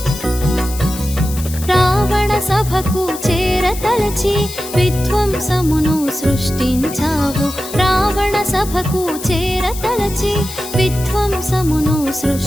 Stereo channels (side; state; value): left; noise; hiss, 12 dB below the sound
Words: రావణ సభకు చేరతలచి విధ్వంసమును సృష్టించావు రావణ సభకు చేరతలచి విధ్వంసమును